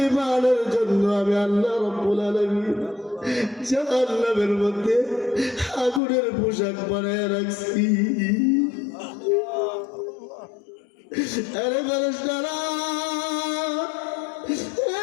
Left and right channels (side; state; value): right; drops out; at 6.0 s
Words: জন্য আমি আল্লাহ রাব্বুল আলামিন জাহান্নামের মধ্যে আগুনের পোশাক বানায় রাখছি। আরে ফেরেশতারা,